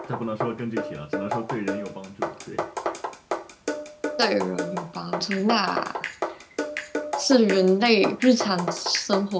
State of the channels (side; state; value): both; identical; correlation 1.00